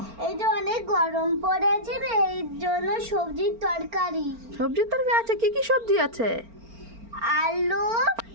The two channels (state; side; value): late; left; 4.4 ms